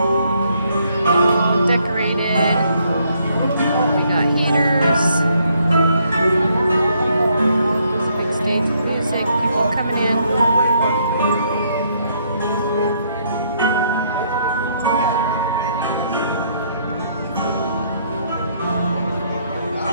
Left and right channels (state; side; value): inverted; both; correlation -0.70